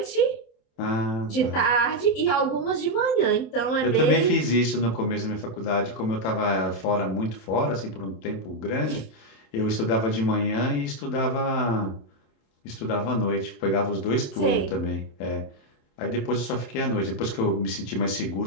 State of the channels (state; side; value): late; right; 27 ms